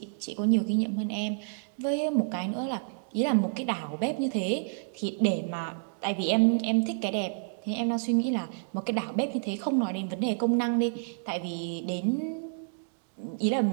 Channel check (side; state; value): left; silent; digital silence